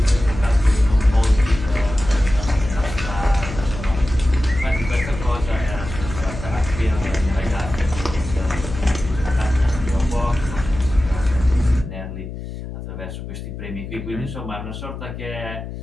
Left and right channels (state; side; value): noise; left; hum, 9 dB below the sound